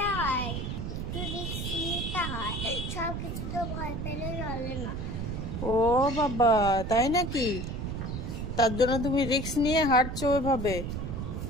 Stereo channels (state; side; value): noise; right; rumble, 4 dB below the sound